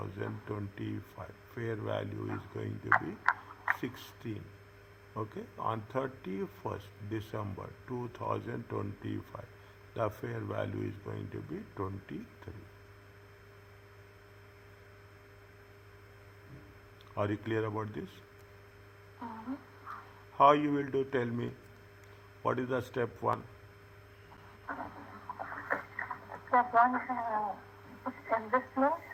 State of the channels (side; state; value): both; identical; correlation 1.00